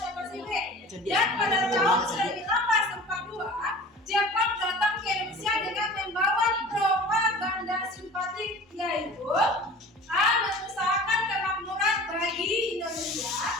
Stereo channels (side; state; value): both; normal; correlation 0.42